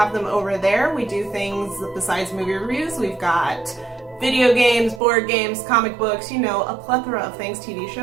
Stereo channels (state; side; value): drops out; left; at 5.0 s